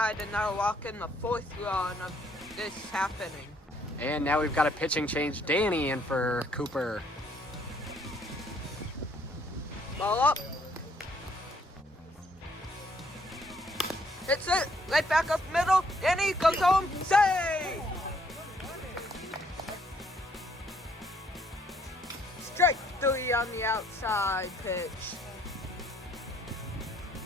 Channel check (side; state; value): both; normal; correlation 0.66